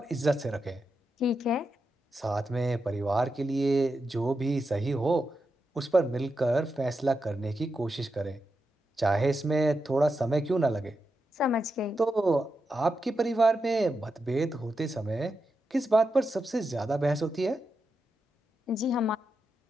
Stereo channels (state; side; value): normal; both; correlation 0.87